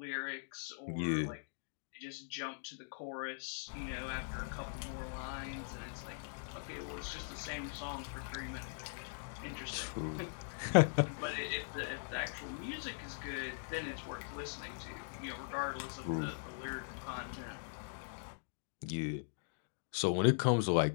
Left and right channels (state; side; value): silent; right; digital silence